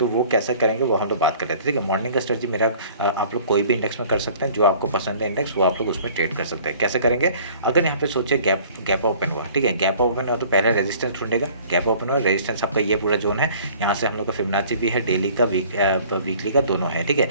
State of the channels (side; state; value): both; inverted; correlation -0.50